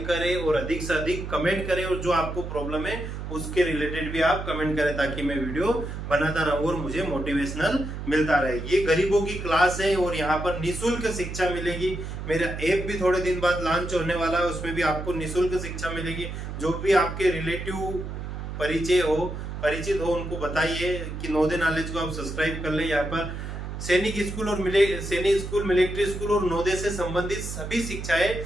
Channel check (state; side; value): noise; right; hum, 7 dB below the sound